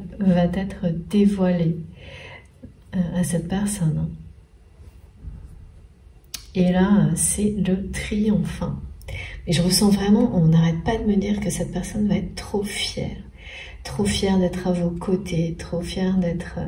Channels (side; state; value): both; identical; correlation 1.00